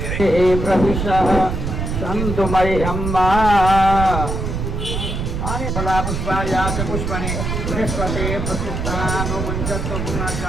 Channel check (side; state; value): right; noise; rumble, 3 dB below the sound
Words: प्रविशः सन्तु मह्यम्मा फला पुष्पाया च पुष्पणे बृहस्पते प्रतिष्ठानुमुञ्चत्व